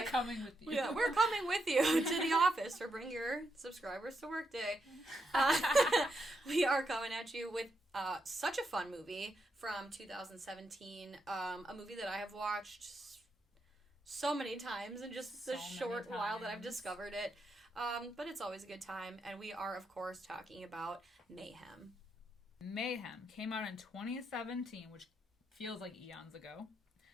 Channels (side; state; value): both; normal; correlation 0.82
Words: Coming with you. Yeah, we're coming with you to the office for Bring Your Subscribers to Work Day. We are coming at you with such a fun movie from 2017. A movie that I have watched so many times in just the short while that I've discovered it. But it's always a good time. And we are, of course, talking about Mayhem. Mayhem came out in 2017, which feels like eons ago.